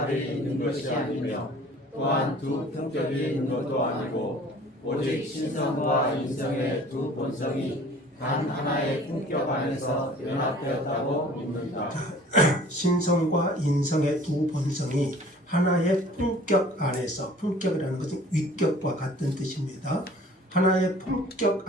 있는 것이 아니며 또한 두 품격이 있는 것도 아니고 오직 신성과 인성의 두 본성이 단 하나의 품격 안에서 연합되었다고 믿는다. 신성과 인성의 두 본성이 하나의 품격 안에서, 품격이라는 것은 위격과 같은 뜻입니다. 하나의 품격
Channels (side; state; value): both; normal; correlation 0.49